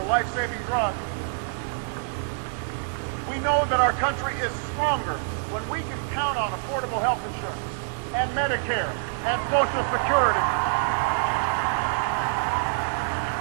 life-saving drug. We know that our country is stronger when we can count on affordable health insurance and Medicare and Social Security.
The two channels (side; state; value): left; silent; digital silence